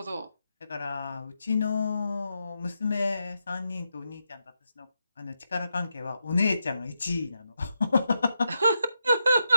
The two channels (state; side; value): inverted; both; correlation -0.85